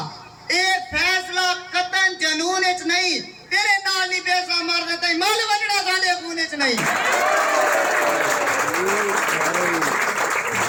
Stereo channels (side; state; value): both; identical; correlation 1.00